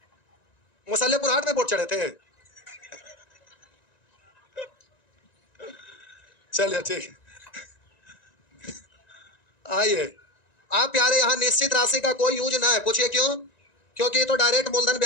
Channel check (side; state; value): right; late; 1.9 ms